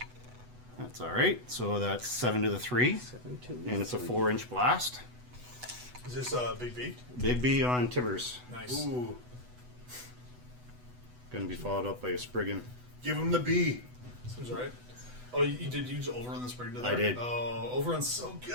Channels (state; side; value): late; left; 8.1 ms